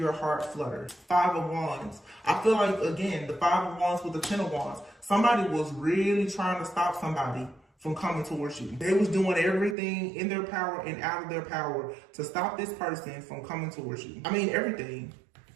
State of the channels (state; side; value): drops out; left; at 9.8 s